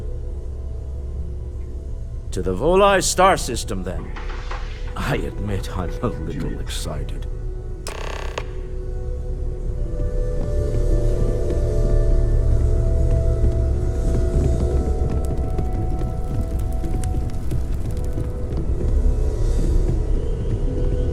To the Volai star system, then. I admit I'm a little excited.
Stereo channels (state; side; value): identical; both; correlation 1.00